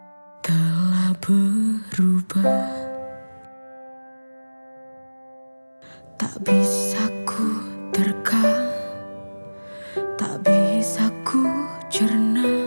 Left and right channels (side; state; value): both; inverted; correlation -1.00